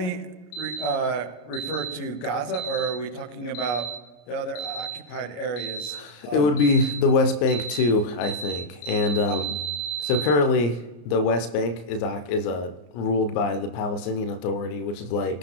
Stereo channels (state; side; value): late; right; 34 ms